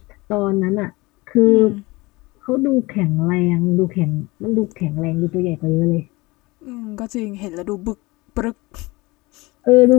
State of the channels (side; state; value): right; quieter; 22.7 dB